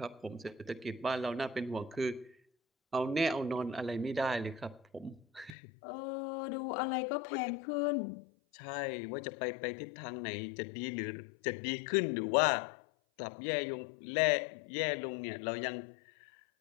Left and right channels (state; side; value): drops out; right; at 5.6 s